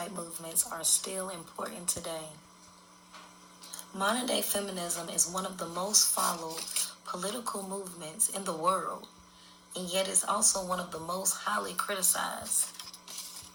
movements are still important today. Modern day feminism is one of the most followed political movements in the world, and yet it's also one of the most highly criticized.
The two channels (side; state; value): both; identical; correlation 1.00